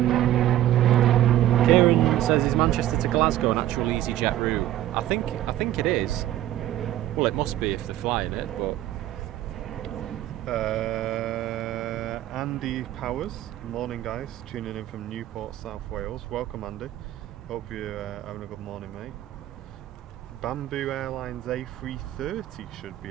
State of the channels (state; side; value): quieter; left; 13.3 dB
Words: Kieran says, is Manchester to Glasgow an actual EasyJet route? I think it is. Well, it must be if they're flying it, but Andy Powers, morning guys, tuning in from Newport, South Wales. Welcome, Andy. Hope you're having a good morning, mate. Bamboo Airlines A330 should